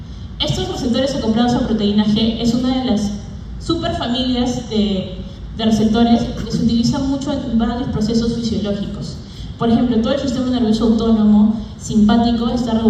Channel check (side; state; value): both; identical; correlation 1.00